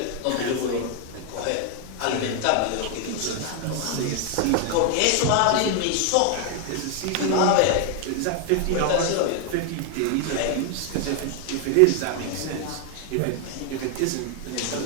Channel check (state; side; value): different; both; correlation 0.00